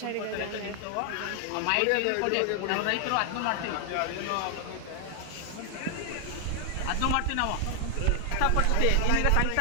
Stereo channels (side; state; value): both; different; correlation 0.00